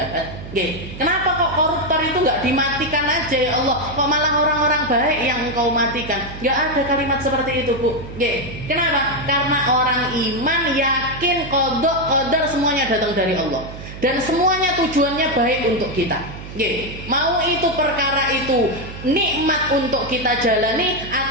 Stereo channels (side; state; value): right; noise; hum, 12 dB below the sound